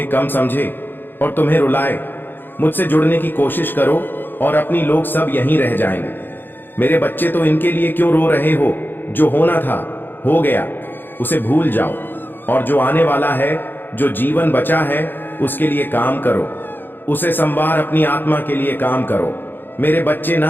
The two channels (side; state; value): right; late; 0.096 ms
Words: कम समझे और तुम्हें रुलाए। मुझसे जुड़ने की कोशिश करो और अपनी लोग सब यहीं रह जाएंगे। मेरे बच्चे, तो इनके लिए क्यों रो रहे हो? जो होना था हो गया, उसे भूल जाओ, और जो आने वाला है, जो जीवन बचा है, उसके लिए काम करो। उसे संवार, अपनी आत्मा के लिए काम करो मेरे बच्चे,